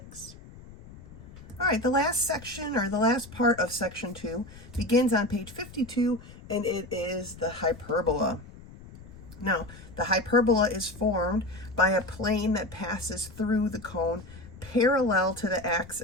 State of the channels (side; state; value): left; noise; rumble, 18 dB below the sound